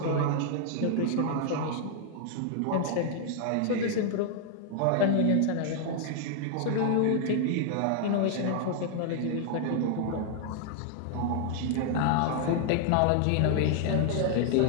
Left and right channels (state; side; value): different; both; correlation 0.00